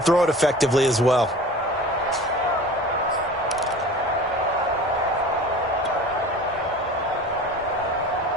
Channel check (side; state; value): both; normal; correlation 0.39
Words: it effectively as well.